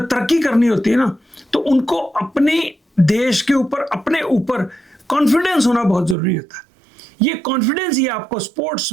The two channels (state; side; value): drops out; left; at 6.2 s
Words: तरक्की करनी होती है ना, तो उनको अपने देश के ऊपर, अपने ऊपर कॉन्फिडेंस होना बहुत ज़रूरी होता है। ये कॉन्फिडेंस ही आपको स्पोर्ट्स